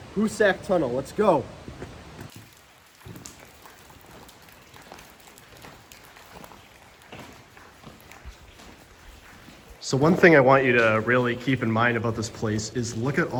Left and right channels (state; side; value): identical; both; correlation 1.00